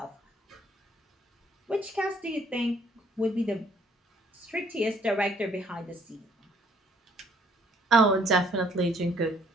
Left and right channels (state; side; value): normal; both; correlation 0.64